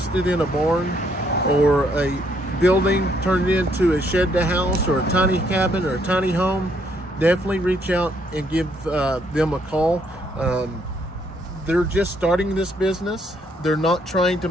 in a barn or a building turned into a shed to house or a tiny cabin or a tiny home, definitely reach out and give them a call. They're just starting this business. They're not trying to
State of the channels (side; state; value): both; normal; correlation 0.70